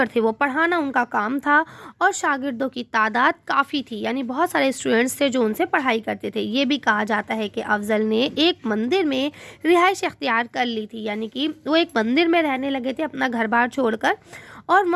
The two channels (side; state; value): both; identical; correlation 1.00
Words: थे, वो पढ़ाना उनका काम था, और शागिर्दों की तादाद काफ़ी थी, यानी बहुत सारे स्टूडेंट्स थे जो उनसे पढ़ाई करते थे। ये भी कहा जाता है कि अफजल ने एक मंदिर में रिहाइश इख्तियार कर ली थी, यानी कि वो एक मंदिर में रहने लगे थे अपना घर बार छोड़कर, और